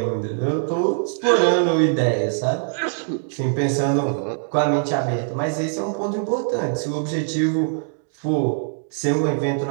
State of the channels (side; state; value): left; silent; digital silence